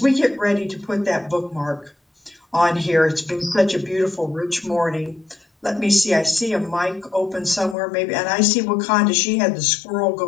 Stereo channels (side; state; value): right; drops out; at 7.8 s